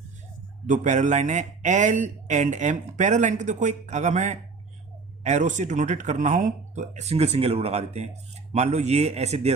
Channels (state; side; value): quieter; left; 4.5 dB